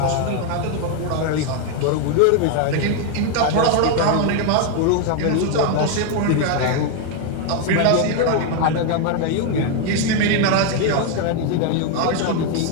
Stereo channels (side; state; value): both; different; correlation 0.01